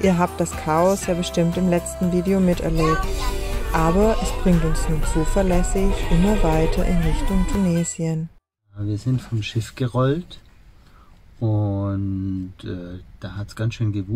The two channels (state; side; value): identical; both; correlation 1.00